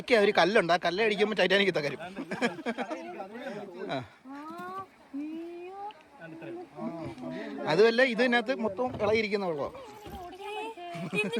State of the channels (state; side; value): identical; both; correlation 1.00